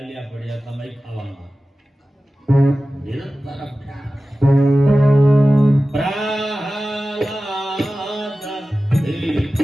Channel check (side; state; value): both; normal; correlation 0.95